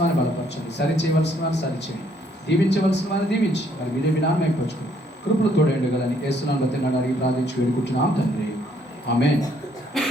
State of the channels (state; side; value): normal; both; correlation 0.67